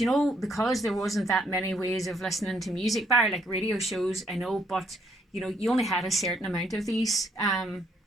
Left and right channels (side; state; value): both; normal; correlation 0.70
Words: you know, because there wasn't that many ways of listening to music, bar like radio shows, I know, but you know, you only had a certain amount of these